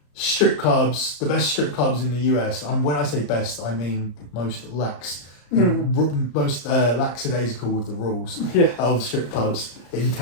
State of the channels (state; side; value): late; right; 34 ms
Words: strip clubs, the best strip clubs in the US. And when I say best, I mean most lax, most lackadaisical with the rules of strip clubs in